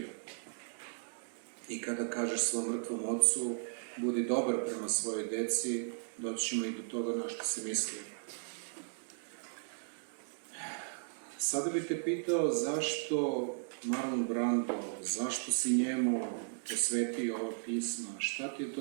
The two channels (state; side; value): silent; left; digital silence